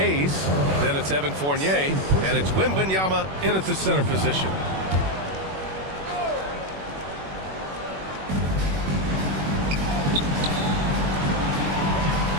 Then it's Evan Fournier. And it's Wembanyama in at the center position.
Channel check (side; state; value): left; late; 21 ms